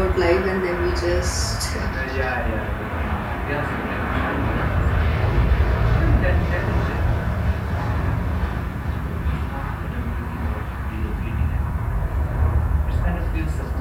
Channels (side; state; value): both; identical; correlation 1.00